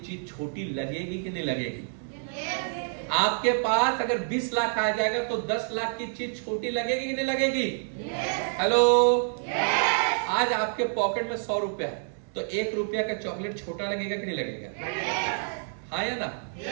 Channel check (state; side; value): silent; left; digital silence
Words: चीज छोटी लगेगी कि नहीं लगेगी? आपके पास अगर 20 लाख आ जाएगा तो 10 लाख की चीज छोटी लगेगी कि नहीं लगेगी? हेलो, आज आपके पॉकेट में 100 रुपया है तो 1 रुपया का चॉकलेट छोटा लगेगा कि नहीं लगेगा? हाँ या ना?